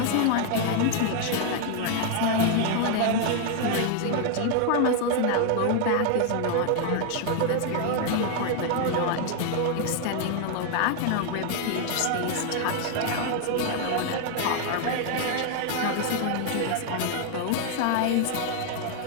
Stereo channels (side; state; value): both; different; correlation 0.00